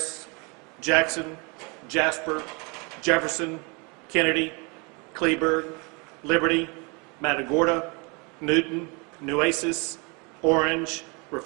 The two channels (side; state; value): left; quieter; 30.7 dB